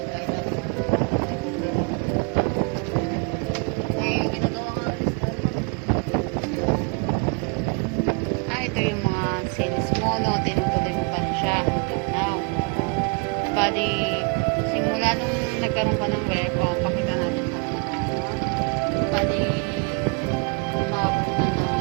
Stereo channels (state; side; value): quieter; left; 33.5 dB